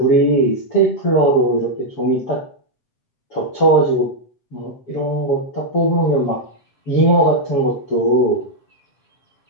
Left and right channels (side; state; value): right; late; 7.2 ms